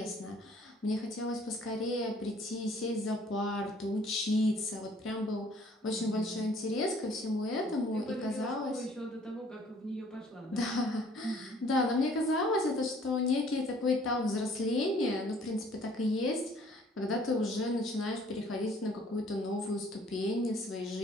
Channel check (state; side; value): normal; both; correlation 0.57